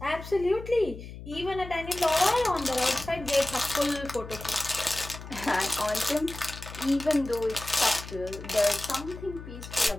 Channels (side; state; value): left; noise; hum, 13 dB below the sound